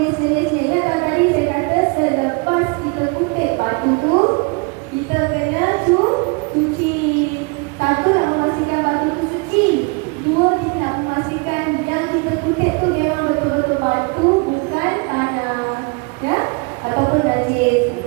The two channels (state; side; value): quieter; left; 30.7 dB